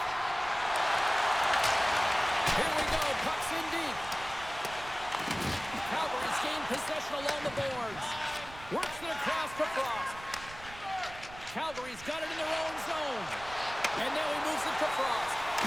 possession along the boards. Works it across to Frost. Calgary's got it in their own zone. And now he moves it to Frost.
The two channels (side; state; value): right; noise; rumble, 16 dB below the sound